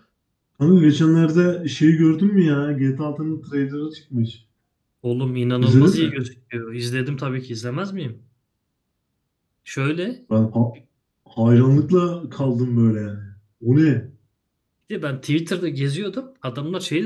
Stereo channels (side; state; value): both; identical; correlation 1.00